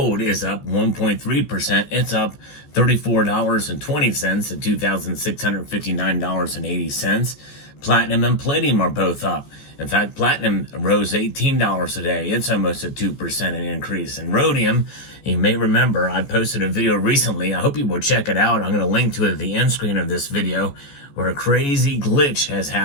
is up 1.3%. It's up $34.20 to $2,659.80. Platinum and palladium are both up. In fact, platinum rose $18 a day. It's almost a 2% increase. And rhodium, you may remember, I posted a video recently. I hope you will check it out. I'm going to link to it at the end screen of this video, where a crazy glitch has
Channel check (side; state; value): right; late; 14 ms